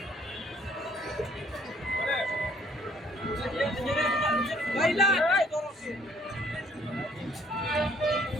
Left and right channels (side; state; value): both; normal; correlation 0.61